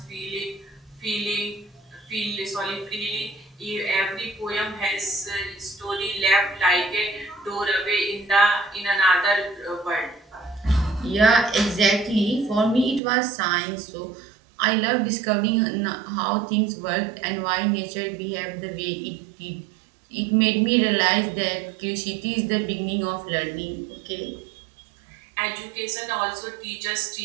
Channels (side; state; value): left; drops out; at 13.0 s